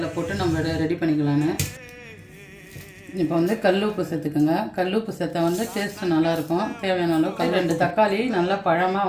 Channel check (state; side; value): identical; both; correlation 1.00